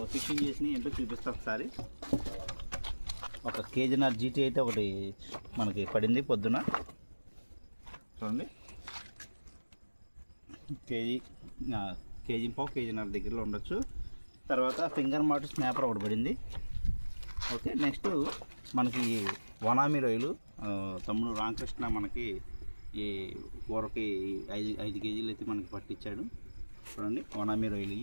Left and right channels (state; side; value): inverted; both; correlation -1.00